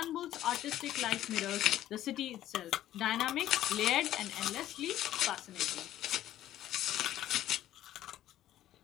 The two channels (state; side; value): quieter; right; 13.0 dB